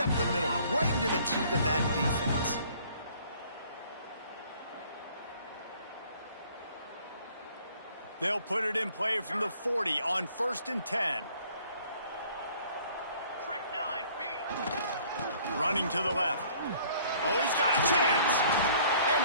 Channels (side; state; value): both; inverted; correlation -0.56